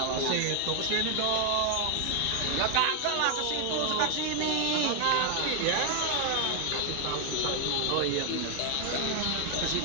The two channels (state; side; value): different; both; correlation 0.00